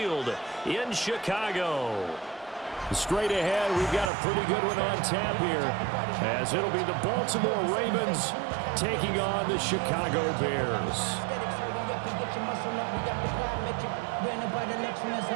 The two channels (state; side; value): drops out; left; at 4.1 s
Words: in Chicago. Straight ahead, we've got a pretty good one on tap here, as it'll be the Baltimore Ravens taking on the Chicago Bears.